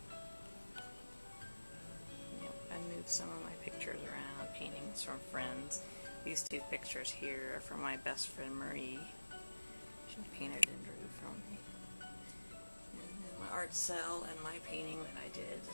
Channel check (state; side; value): inverted; both; correlation -1.00